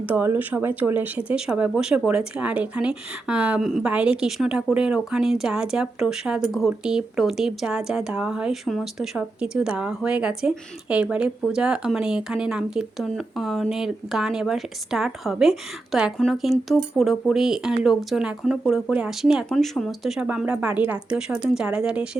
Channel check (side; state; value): left; quieter; 3.1 dB